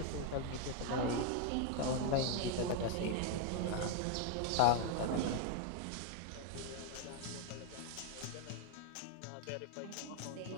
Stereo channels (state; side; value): different; both; correlation 0.01